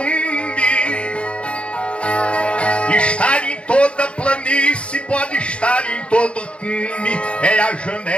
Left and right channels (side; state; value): right; late; 0.059 ms